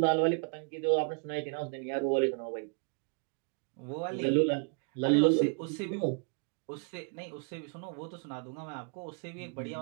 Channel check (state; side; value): quieter; left; 39.9 dB